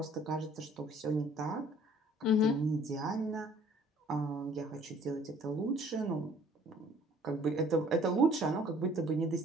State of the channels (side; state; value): both; normal; correlation 0.56